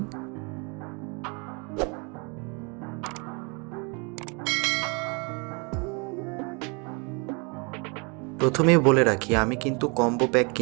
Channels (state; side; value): quieter; left; 32.4 dB